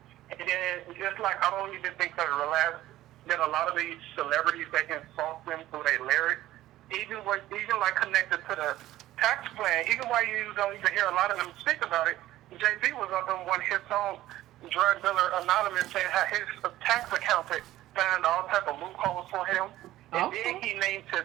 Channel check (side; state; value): left; quieter; 14.9 dB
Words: And then just like I don't even think that a lot of these celebrities, they insult them through their lyrics. Even like connected to the tax plan, even while you don't even hear a lot of them speak about it, JB was up on his own drug dealer anonymous saying how his tax accountant found all type of loopholes for him. And then he named